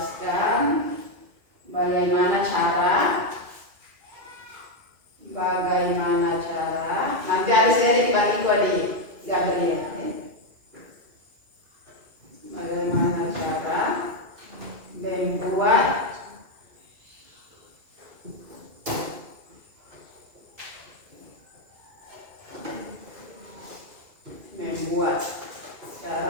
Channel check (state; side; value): late; left; 2.4 ms